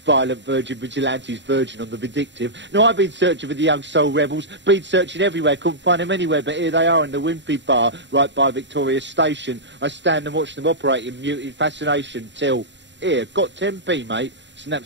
violent virgin vigilantes virgin on the vindictive. Now I've been searching for the young soul rebels, been searching everywhere, couldn't find them anywhere, but here they are in the Wimpy Bar, right by Victoria Station. I stand and watch them operate in muted fascination till, here, got 10p, mate,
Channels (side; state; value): left; late; 0.52 ms